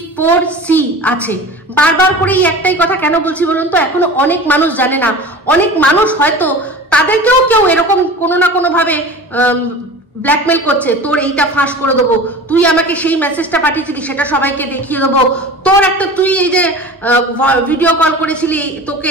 আছে। বারবার করে এই একটাই কথা কেন বলছি বলুন তো, এখনো অনেক মানুষ জানে না। অনেক মানুষ হয়তো তাদেরকেও কেউ এরকম কোনো না কোনো ভাবে ব্ল্যাকমেল করছে, তোর এইটা ফাঁস করে দেবো, তুই আমাকে সেই মেসেজটা পাঠিয়েছিলি সেটা সবাইকে দেখিয়ে দেবো, তোর একটা তুই এই যে ভিডিও কল করেছিলি তোকে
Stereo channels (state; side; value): normal; both; correlation 0.36